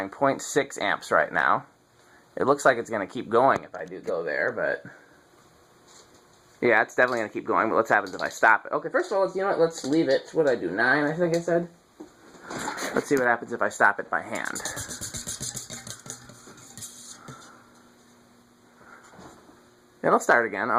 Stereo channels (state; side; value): identical; both; correlation 1.00